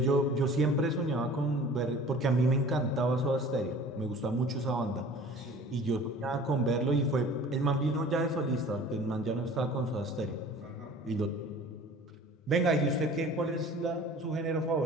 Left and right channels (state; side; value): normal; both; correlation 0.45